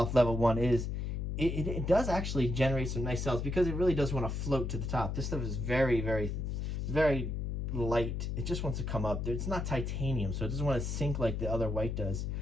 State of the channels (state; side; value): noise; left; hum, 2 dB below the sound